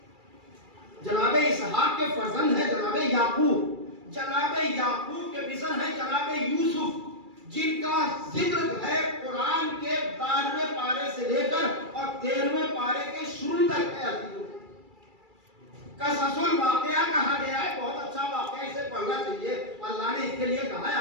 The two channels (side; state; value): left; late; 2.3 ms